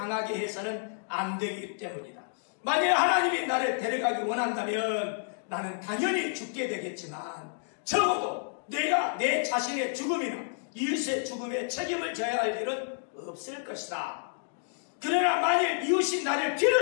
해서는 안 되기 때문이다. 만약 하나님이 나를 데려가기 원한다면 나는 당연히 죽게 되겠지만 적어도 내가 내 자신의 죽음이나 이웃의 죽음에 책임을 져야 할 일은 없을 것이다. 그러나 만일 이웃이 나를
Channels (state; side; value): silent; right; digital silence